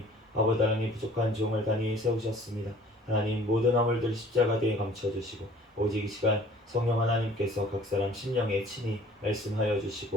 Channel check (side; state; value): both; normal; correlation 0.51